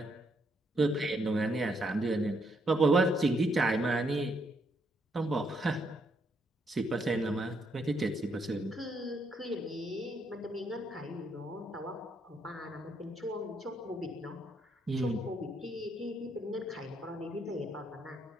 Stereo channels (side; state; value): both; normal; correlation 0.75